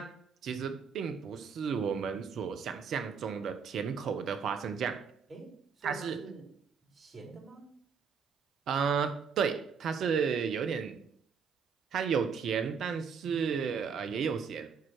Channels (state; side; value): quieter; left; 6.2 dB